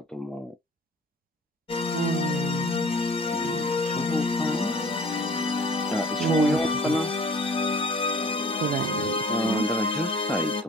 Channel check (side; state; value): both; normal; correlation 0.48